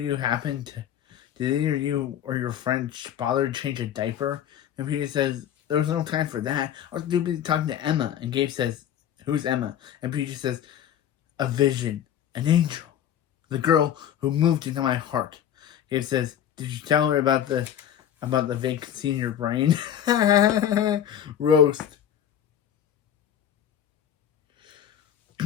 did either you or your friend bother to change a diaper? And PJ says, there was no time for that. I was too busy talking to Emma. And Gabe says, who's Emma? And PJ says, a vision, an angel, the girl who moved into my heart. Gabe says, did you tell her about the vacancy in your brain? Roast.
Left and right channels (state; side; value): quieter; right; 10.0 dB